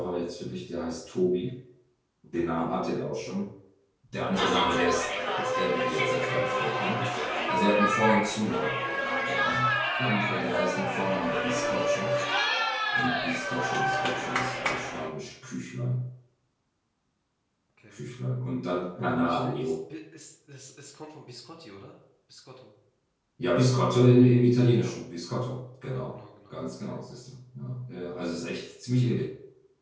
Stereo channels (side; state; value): both; identical; correlation 1.00